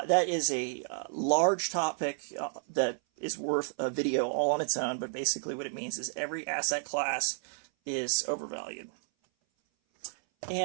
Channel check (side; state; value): left; silent; 57 dB below the other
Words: is a large topic that is worth a video all on its own, but basically what it means is every asset class is overvalued.